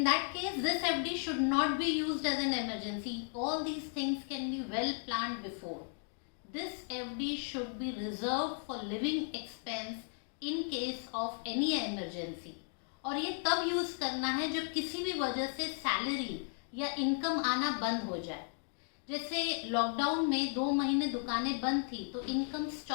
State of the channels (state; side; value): silent; right; 54 dB below the other